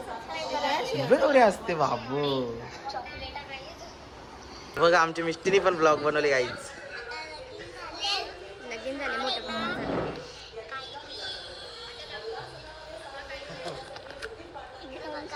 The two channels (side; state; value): both; identical; correlation 1.00